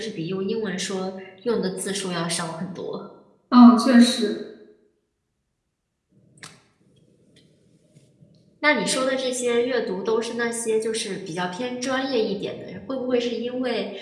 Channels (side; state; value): both; identical; correlation 1.00